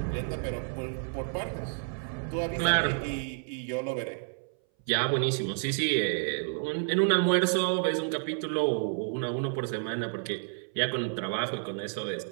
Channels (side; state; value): left; silent; 58 dB below the other